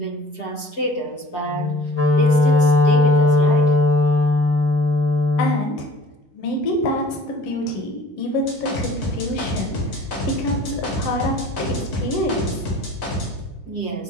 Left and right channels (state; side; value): late; right; 6.1 ms